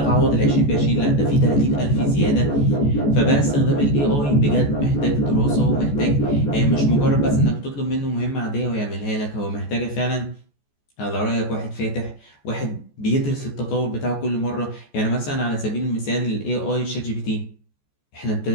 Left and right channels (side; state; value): right; late; 14 ms